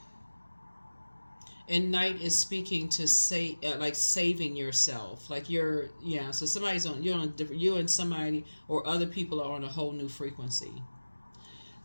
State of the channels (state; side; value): inverted; both; correlation -1.00